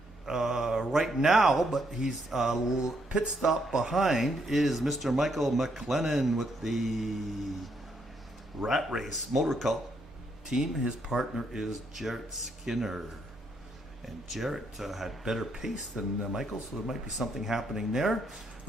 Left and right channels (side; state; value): both; normal; correlation 0.75